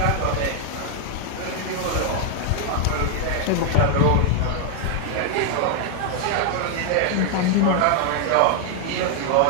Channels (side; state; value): both; different; correlation 0.00